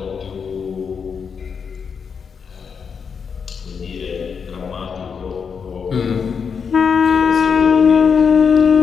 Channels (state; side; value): quieter; right; 6.2 dB